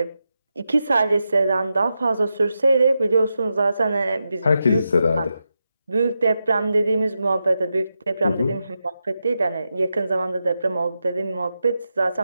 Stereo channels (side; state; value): both; inverted; correlation -0.88